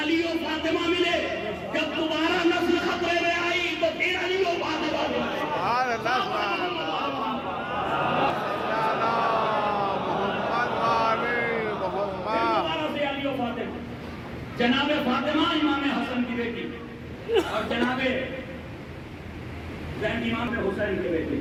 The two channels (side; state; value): both; identical; correlation 1.00